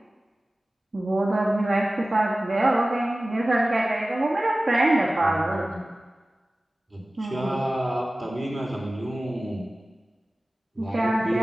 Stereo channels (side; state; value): both; normal; correlation 0.97